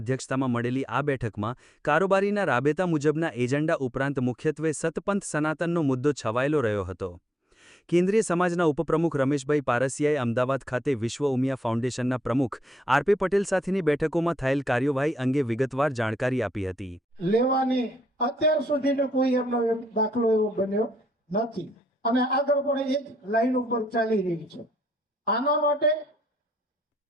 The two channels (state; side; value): normal; both; correlation 0.77